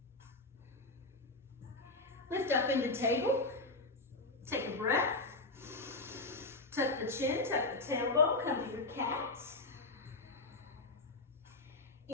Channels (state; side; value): quieter; right; 3.1 dB